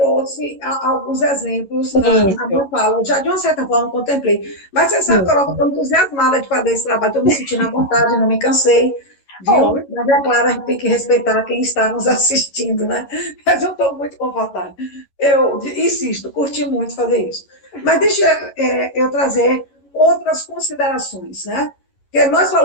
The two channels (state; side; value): late; right; 11 ms